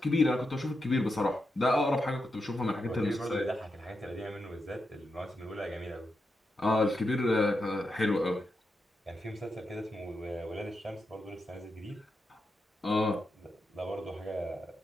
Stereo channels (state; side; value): normal; both; correlation 0.86